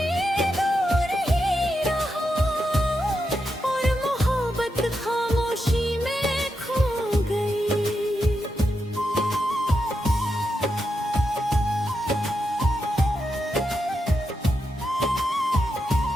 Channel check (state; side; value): normal; both; correlation 0.86